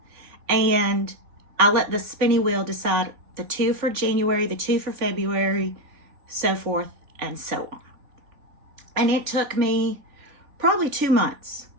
and I let the spinny wheel decide the 2 for January, the 2 for February, so forth and so on. And it took me probably 2 months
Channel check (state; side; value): late; left; 3.4 ms